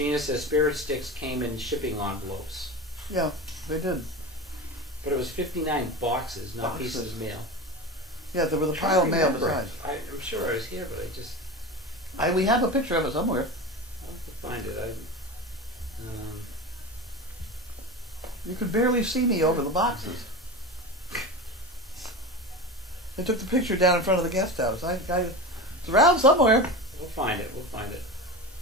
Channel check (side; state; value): both; normal; correlation 0.27